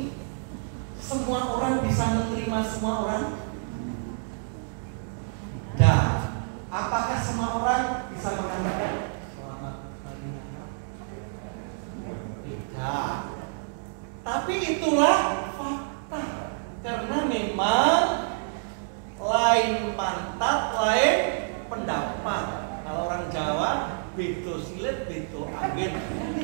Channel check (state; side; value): silent; left; digital silence